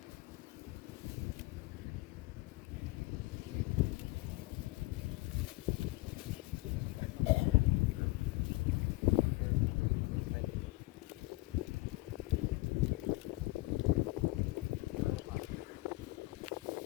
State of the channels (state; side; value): quieter; right; 21.7 dB